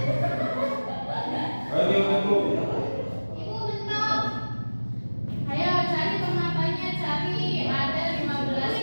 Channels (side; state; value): both; inverted; correlation -1.00